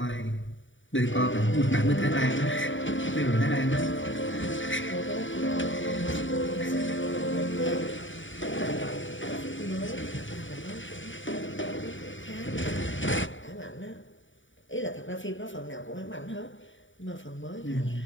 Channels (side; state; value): right; late; 0.56 ms